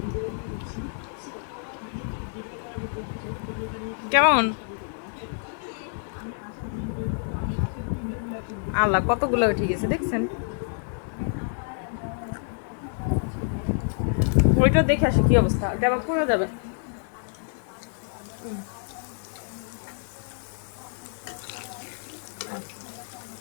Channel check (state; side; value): silent; right; 60 dB below the other